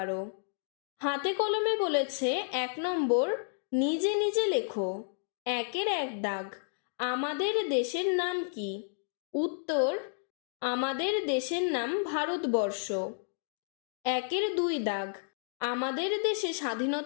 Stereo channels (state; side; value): silent; right; digital silence